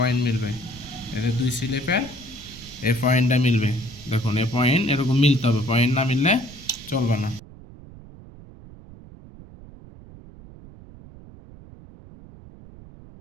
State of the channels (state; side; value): noise; right; rumble, 19 dB below the sound